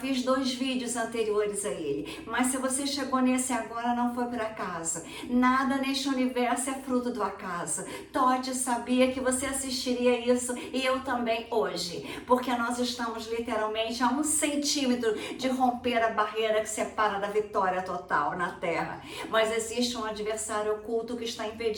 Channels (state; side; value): identical; both; correlation 1.00